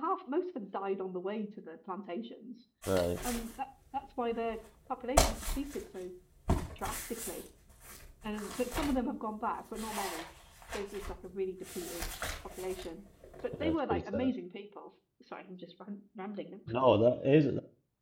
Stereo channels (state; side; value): identical; both; correlation 1.00